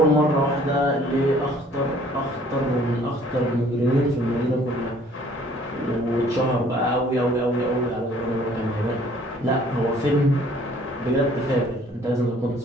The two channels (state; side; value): normal; both; correlation 0.57